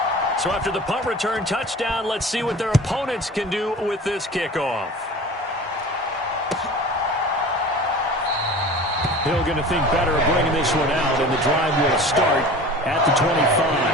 So after the punt return touchdown, let's see what their opponents can do with this kickoff. Hill going to think better of bringing this one out, and the drive will start at the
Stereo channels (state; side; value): normal; both; correlation 0.39